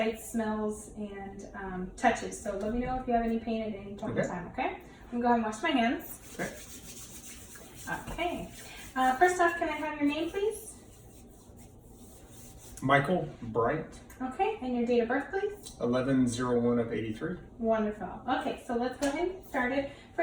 smells, and touches. So let me know if you have any pain at any point in time, okay? I'm going to go ahead and wash my hands. Okay. First off, can I have your name, please? Michael Bright. Okay, and your date of birth, please? 11/01 of 83. Wonderful. Okay, so let's go ahead and get started.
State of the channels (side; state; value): both; identical; correlation 1.00